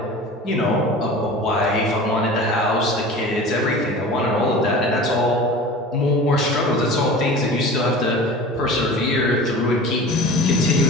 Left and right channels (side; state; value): both; normal; correlation 0.37